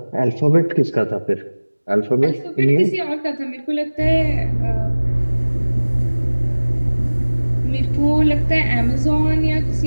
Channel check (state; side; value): inverted; both; correlation -1.00